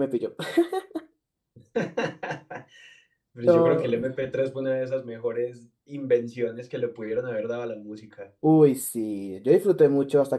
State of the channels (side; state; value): both; identical; correlation 1.00